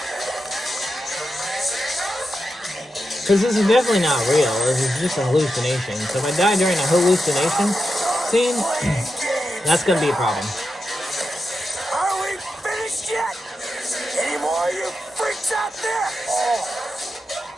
Because this is definitely not real. This is just a hallucination. So if I die during a hallucination scene, that's going to be a problem. Are we finished yet? Any more of you freaks out there?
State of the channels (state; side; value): normal; both; correlation 0.89